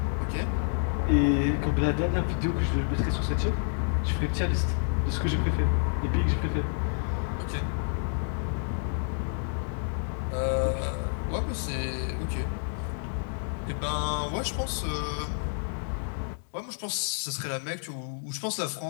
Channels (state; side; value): silent; right; digital silence